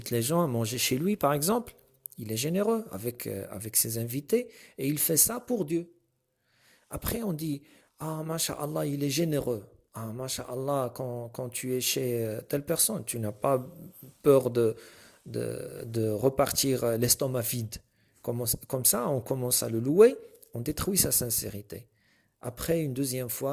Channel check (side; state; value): both; identical; correlation 1.00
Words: les gens à manger chez lui, par exemple. Il est généreux avec ses invités et il fait ça pour Dieu. Après, on dit, ah, masha'Allah, il est généreux. Ah, masha'Allah, quand tu es chez telle personne, tu n'as pas peur de repartir l'estomac vide. Comme ça, on commence à le louer, on détruit sa sincérité. Après, une deuxième